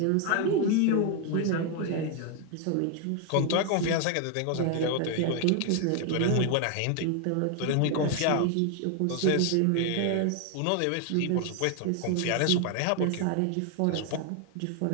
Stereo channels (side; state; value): both; different; correlation 0.00